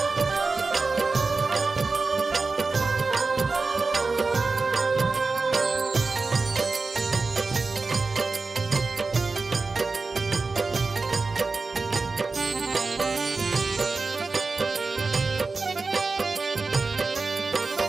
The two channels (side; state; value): left; quieter; 4.0 dB